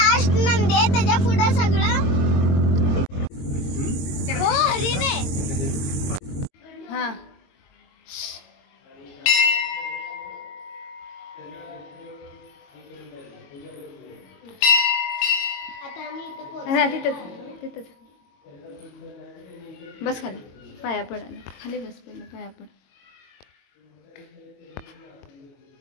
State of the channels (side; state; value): right; late; 22 ms